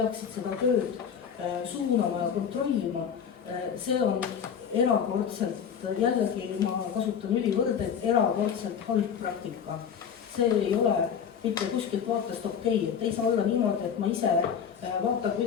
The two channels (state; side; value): quieter; right; 7.6 dB